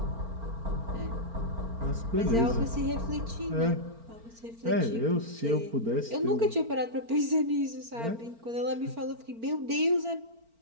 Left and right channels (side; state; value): left; late; 4.4 ms